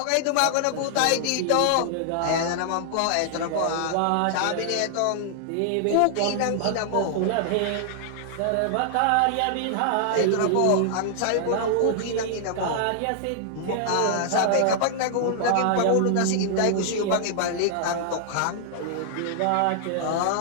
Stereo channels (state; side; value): different; both; correlation -0.01